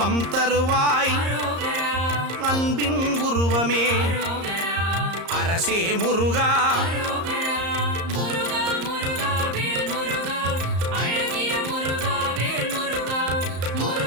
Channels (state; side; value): late; left; 34 ms